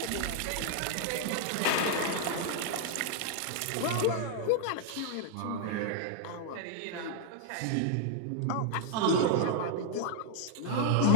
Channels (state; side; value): different; both; correlation 0.00